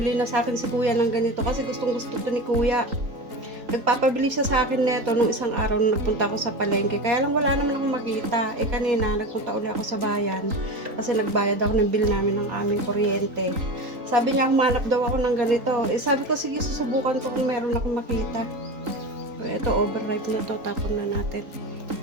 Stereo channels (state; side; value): late; left; 3.9 ms